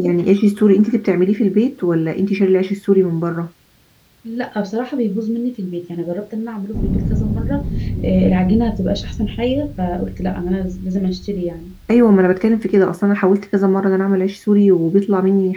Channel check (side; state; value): both; identical; correlation 1.00